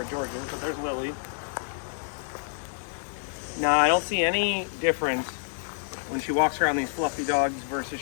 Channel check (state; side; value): silent; right; 59 dB below the other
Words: George is, but there's Lily. Now, I don't see any difference when she walks around these fluffy dogs versus